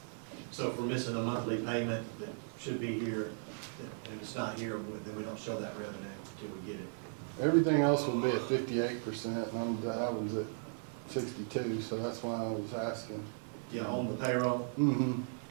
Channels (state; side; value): silent; left; digital silence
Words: So if we're missing a monthly payment that should be here, and it's not here, then we don't show that revenue until we get it. Everything else would be at 58%, and I was at 62, so that's why I was asking. Yeah, on the payroll. Mm-hmm.